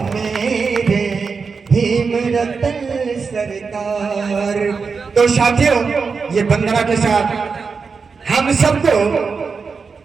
मेरे भीम रतन सरकार। तो साथियों, ये वंदना के साथ हम सबको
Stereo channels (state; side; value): quieter; left; 5.1 dB